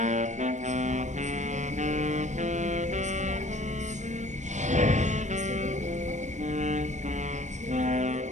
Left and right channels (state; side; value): late; left; 0.34 ms